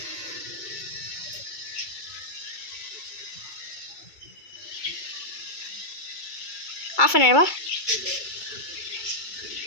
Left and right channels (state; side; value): late; right; 2.3 ms